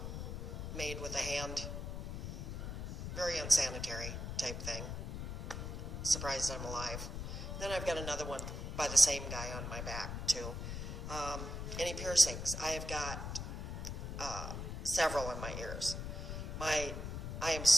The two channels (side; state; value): left; noise; rumble, 5 dB below the sound